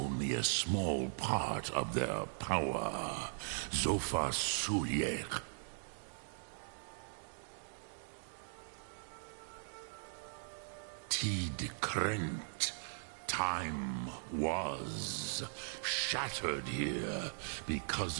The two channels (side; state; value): left; silent; digital silence